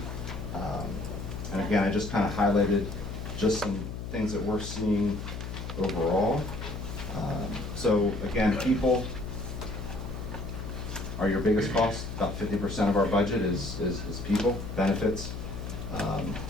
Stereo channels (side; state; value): left; noise; hum, 7 dB below the sound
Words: And again, I just kind of highlighted just some things that we're seeing overall. So again, people are your biggest cost. About 50% of our budget is people, benefits.